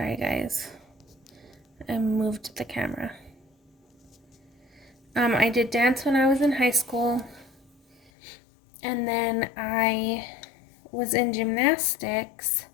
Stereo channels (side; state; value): right; drops out; at 8.1 s